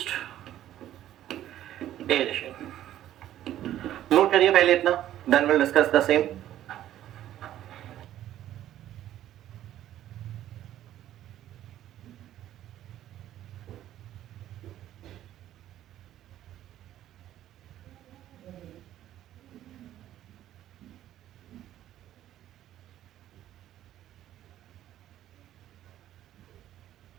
aeration। Note करिए पहले इतना, then we'll discuss the same।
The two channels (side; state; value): left; quieter; 12.5 dB